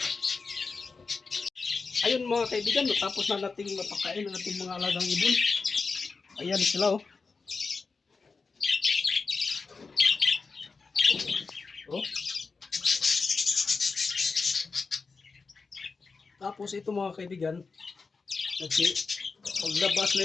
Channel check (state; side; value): quieter; right; 4.5 dB